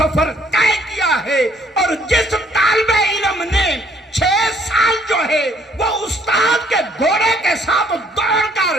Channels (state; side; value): normal; both; correlation 0.63